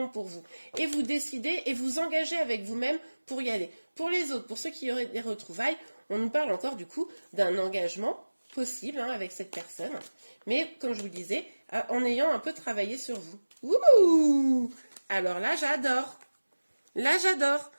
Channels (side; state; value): both; inverted; correlation -1.00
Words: pour vous. Et vous décidez et vous engagez avec vous-même pour y aller. Pour les autres, pour ceux qui auraient des retrouvailles, on nous parle encore du coup d'un engagement possible, hein, avec cette personne, mais comme je vous le disais, en ayant un peu travaillé sur vous. Ouh! Alors là, j'adore. Là, j'adore.